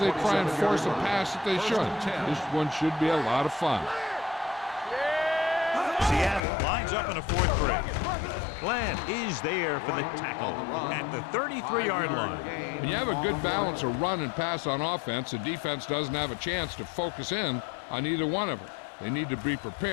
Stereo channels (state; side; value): drops out; right; at 6.4 s